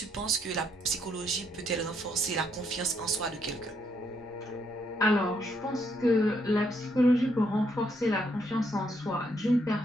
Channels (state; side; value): normal; both; correlation 0.73